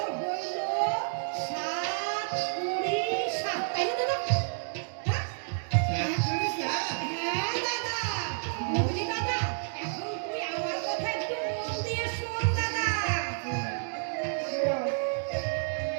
হইল 7 20 7, তাই না দাদা? হ্যাঁ 7 কুড়ি 60। হ্যাঁ দাদা, বুঝলি দাদা? এখন তুই আমার কথা একটু মন দিয়ে শোন দাদা।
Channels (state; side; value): silent; left; digital silence